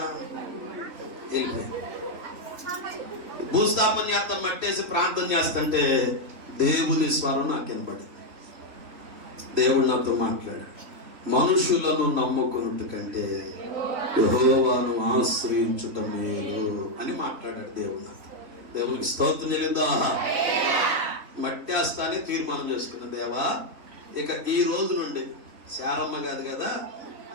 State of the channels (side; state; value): left; late; 3.5 ms